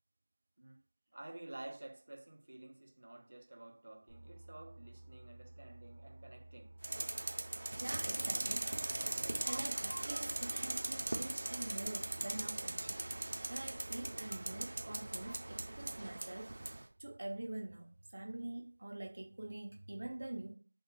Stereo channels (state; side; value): inverted; both; correlation -1.00